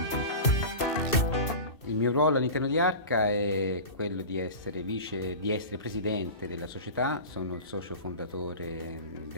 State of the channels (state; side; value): late; right; 2.6 ms